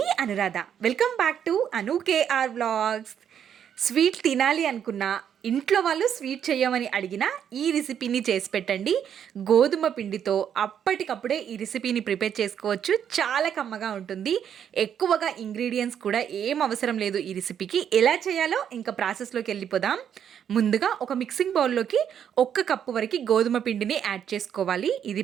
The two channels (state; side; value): quieter; left; 8.8 dB